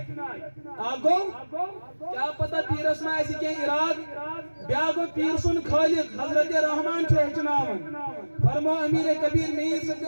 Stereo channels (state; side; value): inverted; both; correlation -1.00